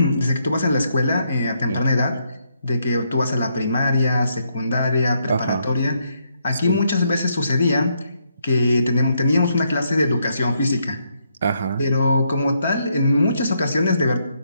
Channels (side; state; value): both; inverted; correlation -0.76